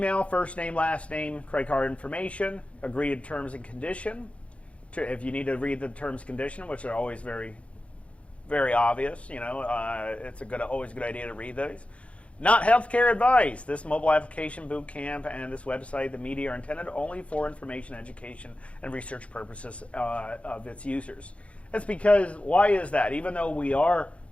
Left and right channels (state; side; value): late; right; 0.062 ms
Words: first name, last name, credit card information, agree to terms and condition. If you need to read the terms and condition, which are always very, very obvious, you know, it's always a good idea to read those. Not healthcare advice. This mobile application boot camp and this website, the media, are intended only for information, education, and research purposes of its users. That's because, why is that? Even though we are